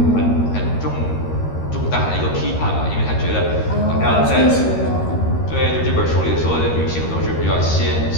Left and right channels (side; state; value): right; late; 13 ms